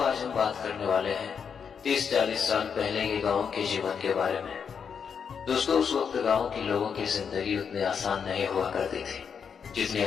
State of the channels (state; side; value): quieter; right; 6.8 dB